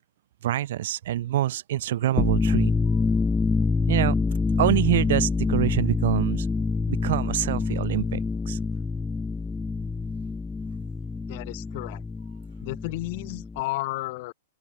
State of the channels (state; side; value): normal; both; correlation 0.39